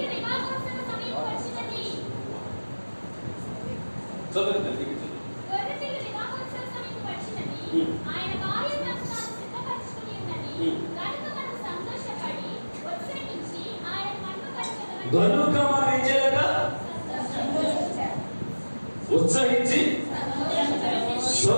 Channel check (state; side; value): inverted; both; correlation -1.00